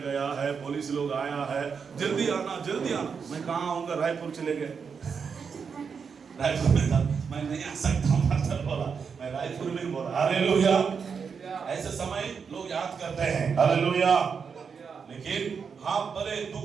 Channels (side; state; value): left; quieter; 6.1 dB